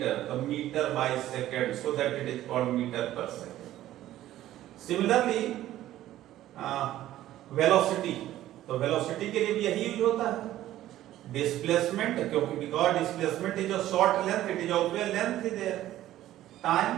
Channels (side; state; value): left; quieter; 13.8 dB